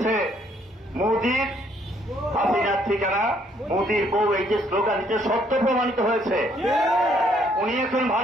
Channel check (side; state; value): both; normal; correlation 0.67